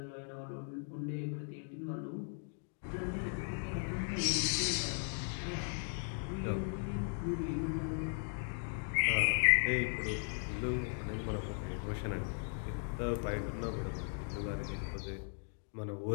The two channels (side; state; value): right; silent; 53 dB below the other